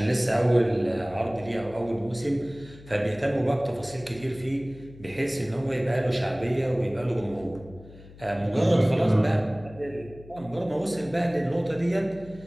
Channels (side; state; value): left; noise; hum, 20 dB below the sound